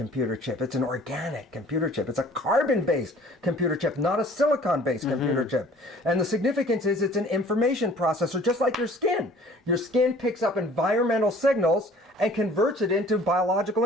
chip. It's an organic computer chip. It's a carbon-based computer chip, not a silicon-based computer chip. And the significance is it's an information processor, just like your skin. Your skin picks up environmental signals and converts it into biological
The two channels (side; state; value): both; normal; correlation 0.51